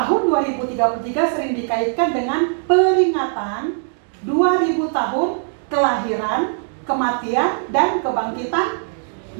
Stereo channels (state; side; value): silent; left; digital silence